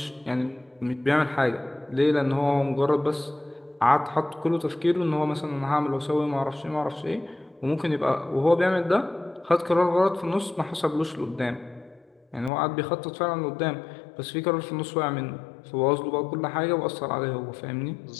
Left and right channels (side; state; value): right; drops out; at 12.5 s